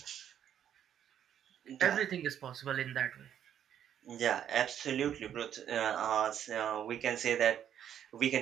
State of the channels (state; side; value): quieter; left; 9.7 dB